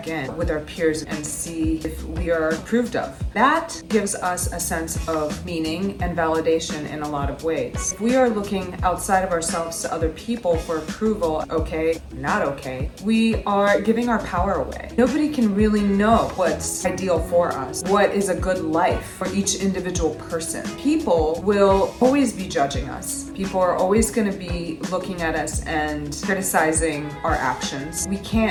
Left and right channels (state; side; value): identical; both; correlation 1.00